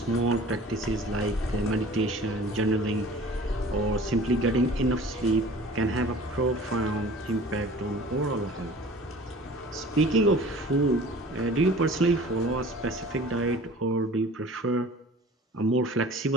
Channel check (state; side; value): normal; both; correlation 0.45